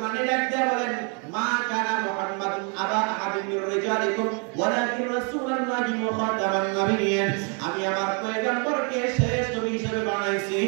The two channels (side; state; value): left; quieter; 37.2 dB